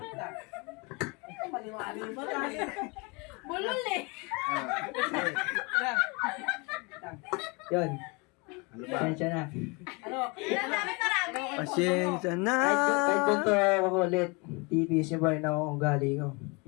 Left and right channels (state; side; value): quieter; right; 29.2 dB